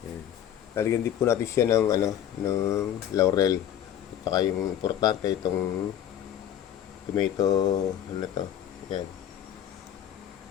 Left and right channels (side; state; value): right; quieter; 10.3 dB